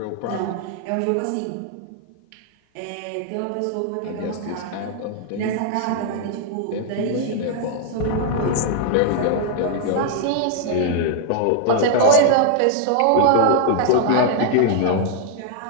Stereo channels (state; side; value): different; both; correlation -0.01